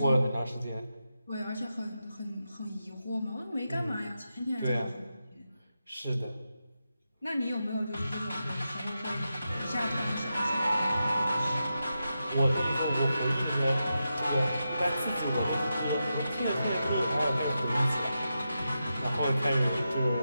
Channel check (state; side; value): inverted; both; correlation -0.89